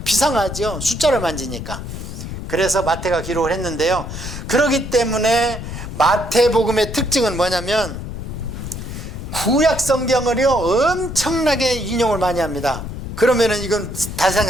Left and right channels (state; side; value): noise; left; rumble, 8 dB below the sound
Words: 비상하죠. 숫자를 만지니까. 그래서 마태가 기록을 했는데요. 그렇기 때문에 마태복음의 특징은 뭐냐면 구약 성경을요 엄청나게 인용을 많이 합니다. 그러면은 이건